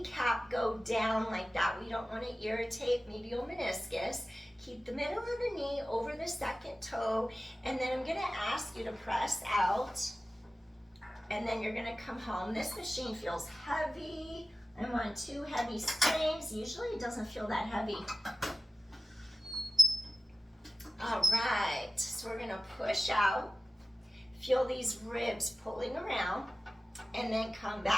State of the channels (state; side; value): normal; both; correlation 0.95